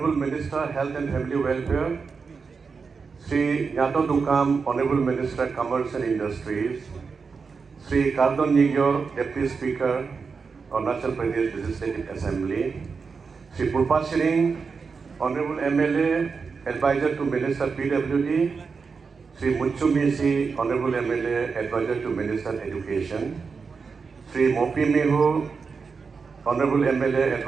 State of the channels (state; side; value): quieter; left; 5.1 dB